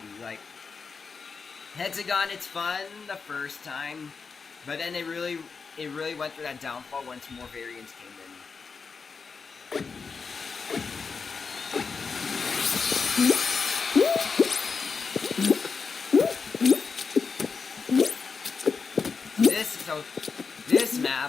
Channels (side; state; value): right; quieter; 5.1 dB